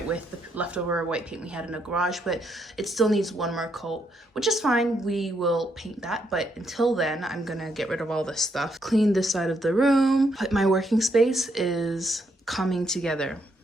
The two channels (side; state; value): both; normal; correlation 0.76